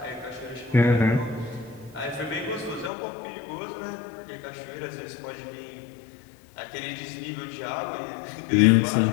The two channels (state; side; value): drops out; right; at 2.9 s